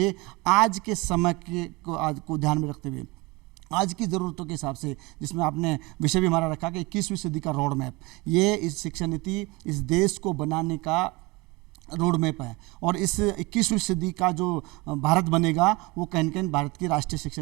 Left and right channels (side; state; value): left; quieter; 23.4 dB